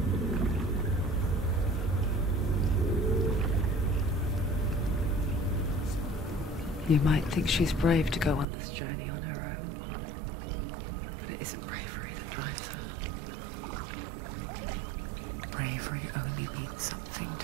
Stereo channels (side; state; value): left; drops out; at 8.5 s